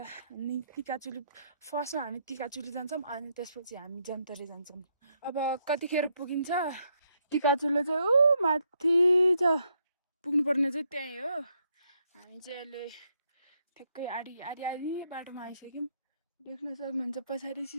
अनि टिकाचुली फर्स्टमा हामी टिकाचुली जान्छौँ अनि त्यसपछि हामी जन्तरे जान्छौँ अब कतिखेर पुगिन्छ टिकाचुली चाहिँ ऊ माथि छ पुग्नुपर्ने चाहिँ त्यहीँ हो हामी चाहिँ अहिले ठ्याक्कै आधी बाटोमा आइसक्यौँ देख्न सक्नुहुन्छ पछाडि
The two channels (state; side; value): inverted; both; correlation -0.76